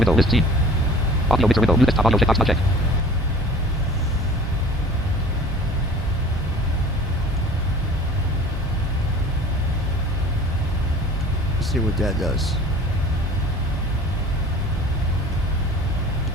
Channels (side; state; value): both; normal; correlation 0.45